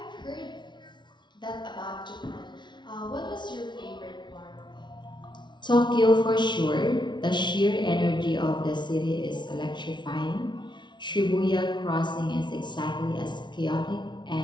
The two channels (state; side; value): late; right; 0.22 ms